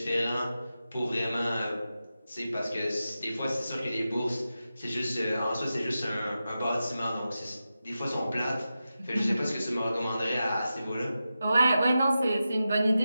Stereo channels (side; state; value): both; inverted; correlation -0.92